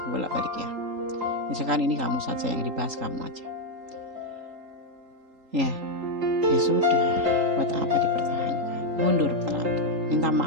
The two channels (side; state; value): left; late; 3.8 ms